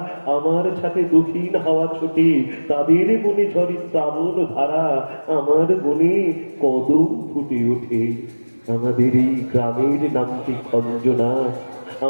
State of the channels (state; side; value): inverted; both; correlation -1.00